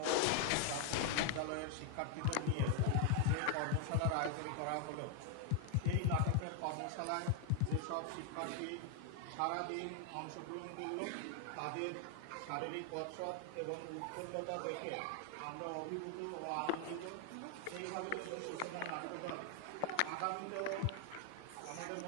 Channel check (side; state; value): both; different; correlation 0.00